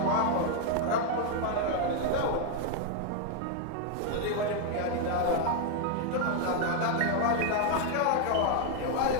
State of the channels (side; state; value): both; different; correlation 0.00